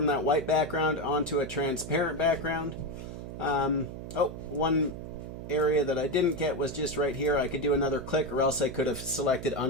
that white background onto a transparent background. One area that I didn't get was just right here. I could do another click, or else I could have selected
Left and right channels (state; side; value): noise; right; hum, 9 dB below the sound